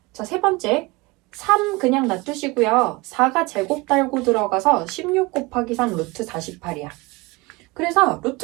자, 세 번째 3 그냥 놔두시고요. 4가 제곱 달고 들어가서 16 곱하기 3 루트 48이야. 그래서 루트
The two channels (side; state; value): left; quieter; 24.1 dB